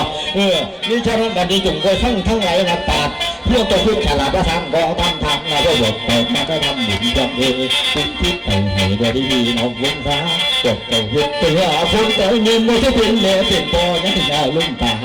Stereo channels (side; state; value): both; identical; correlation 1.00